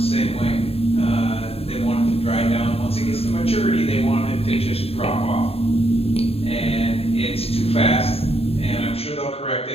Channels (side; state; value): right; late; 0.29 ms